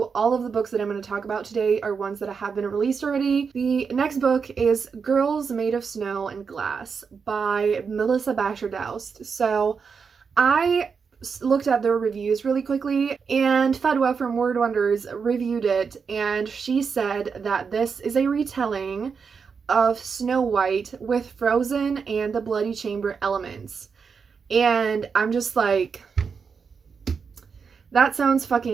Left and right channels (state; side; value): quieter; left; 5.8 dB